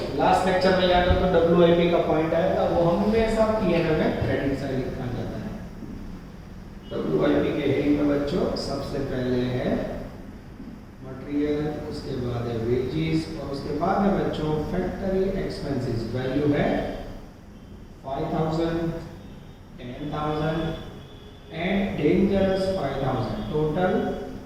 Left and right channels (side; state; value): both; identical; correlation 1.00